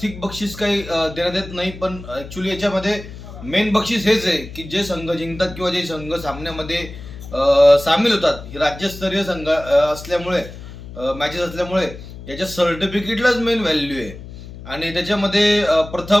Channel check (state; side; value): noise; left; hum, 14 dB below the sound